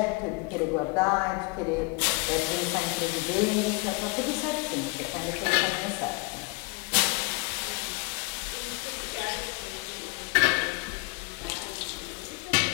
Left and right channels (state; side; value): quieter; right; 27.8 dB